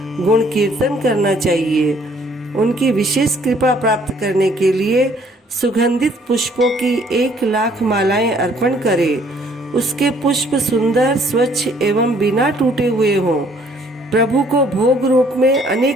गुण कीर्तन करना चाहिए। उनकी विशेष कृपा प्राप्त करने के लिए सुगंधित पुष्पों की 1,00,000 मालाएं अर्पण करें। उसके पुष्प सुंदर, स्वच्छ एवं बिना टूटे हुए हों। प्रभु को भोग रूप में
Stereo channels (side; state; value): both; normal; correlation 0.61